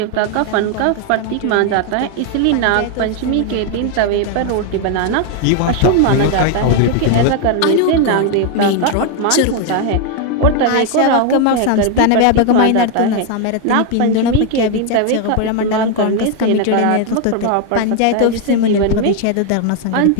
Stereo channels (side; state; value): both; different; correlation 0.01